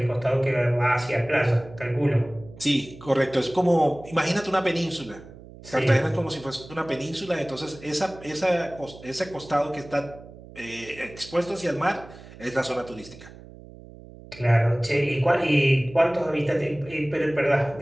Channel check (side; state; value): right; noise; hum, 18 dB below the sound